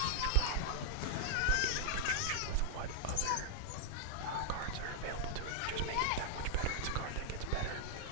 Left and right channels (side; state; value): both; different; correlation -0.01